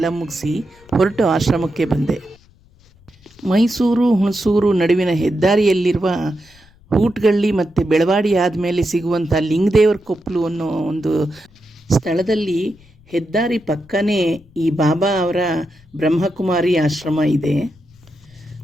ಮುಗಿಸಿ ಹೊರಟು ಆಶ್ರಮಕ್ಕೆ ಬಂದೆ. ಮೈಸೂರು ಹುಣಸೂರು ನಡುವಿನ ಹೆದ್ದಾರಿಯಲ್ಲಿರುವ ಹೂಟ್ಗಳ್ಳಿ ಮತ್ತು ಬೆಳವಾಡಿ ಆದಮೇಲೆ ಸಿಗುವಂಥ ಲಿಂಗದೇವರ ಕೊಪ್ಪಲು ಅನ್ನೋ ಒಂದು ಸ್ಥಳದಲ್ಲಿ ಹೆದ್ದಾರಿ ಪಕ್ಕನೇ ಈ ಬಾಬಾ ಅವರ ಬ್ರಹ್ಮಕುಮಾರಿ ಆಶ್ರಮ ಇದೆ.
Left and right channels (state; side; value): noise; left; rumble, 28 dB below the sound